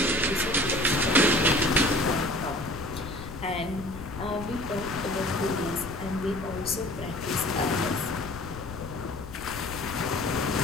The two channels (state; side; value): noise; left; rumble, 12 dB below the sound